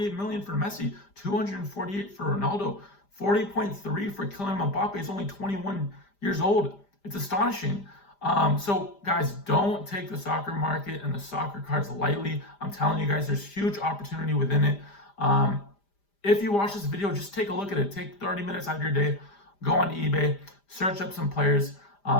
million for Messi, 248 for Ronaldo, 40.3 for Kylian Mbappe. He's only 21 years old. It's astonishing. So guys, don't take the soccer market and the soccer cards lightly. I'm telling you guys, there's huge opportunity within it. If you watch this video, just take a look at it. Take 30 minutes out of your day, go on eBay, search up some players,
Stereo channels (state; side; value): late; right; 5.0 ms